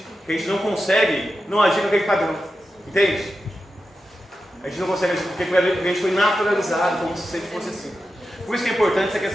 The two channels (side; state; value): both; normal; correlation 0.90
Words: que a gente não consegue não agir com aquele padrão. Entende? A gente não consegue agir porque a gente foi naturalizado como se sempre fosse assim. Por isso que é importante essa